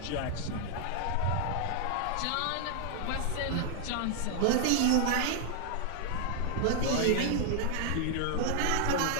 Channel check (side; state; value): both; different; correlation 0.00